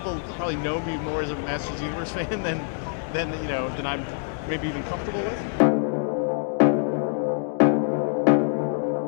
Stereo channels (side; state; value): right; silent; digital silence